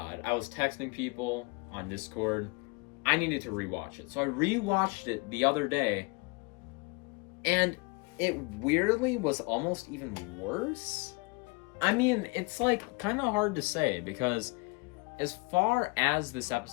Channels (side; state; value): right; quieter; 28.8 dB